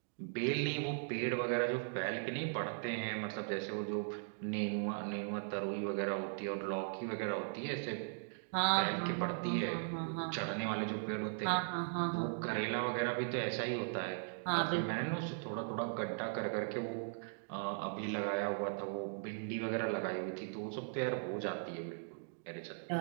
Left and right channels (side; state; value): left; silent; digital silence